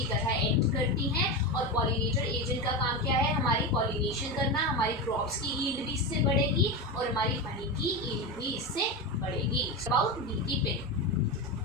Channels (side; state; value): both; normal; correlation 0.18